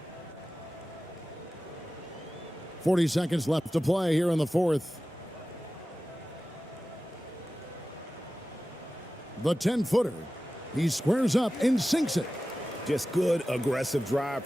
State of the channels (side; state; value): both; normal; correlation 0.95